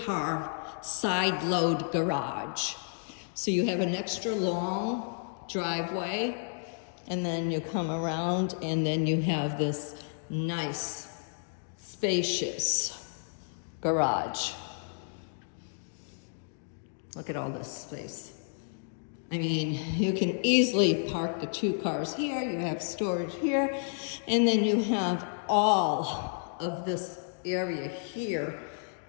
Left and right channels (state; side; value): silent; right; digital silence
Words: side load garage. So you have an extra long driveway, and then you come around, and then you have this nice, spacious garage. Look at all this space. I mean, you can easily park the 2 cars here, you have storage here, and then you have all of this area here